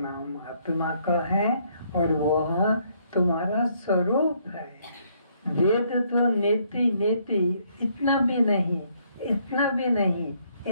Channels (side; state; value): both; inverted; correlation -0.69